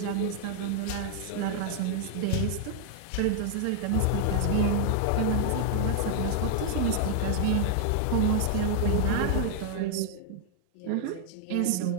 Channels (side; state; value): both; different; correlation -0.01